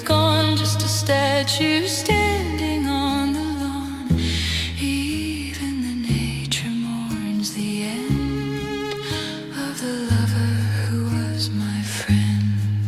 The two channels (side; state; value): both; identical; correlation 1.00